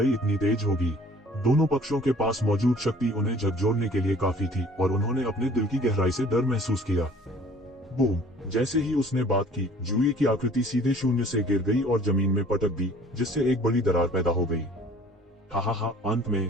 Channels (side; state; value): both; normal; correlation 0.52